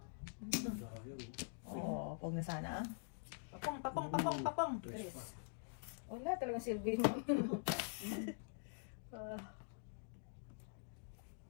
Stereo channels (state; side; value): silent; right; digital silence